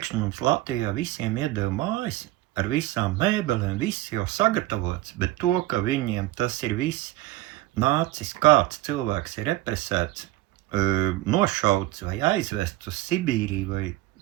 mums Latvijā visiem iedeva mājas ar visām mēbelēm, viss jau sagatavots, bet to, ka viņiem tas ir viss nācis, kāds cilvēks ir represēts, nošauts vai aizvests uz Sibīriju, vai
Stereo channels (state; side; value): quieter; left; 16.6 dB